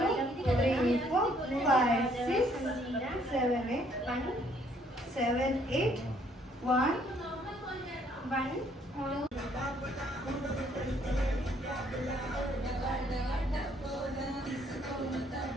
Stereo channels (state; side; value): normal; both; correlation 0.65